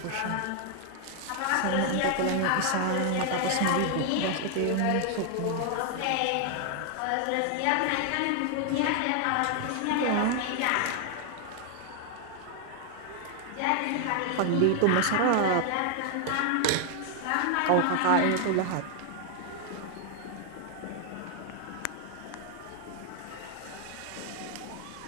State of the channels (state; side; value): different; both; correlation 0.00